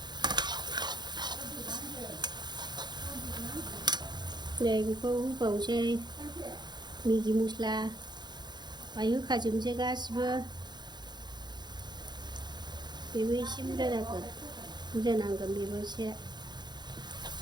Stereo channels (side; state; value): left; late; 0.21 ms